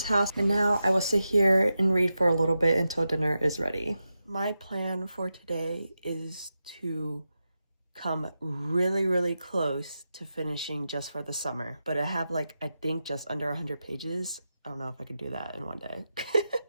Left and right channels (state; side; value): inverted; both; correlation -0.90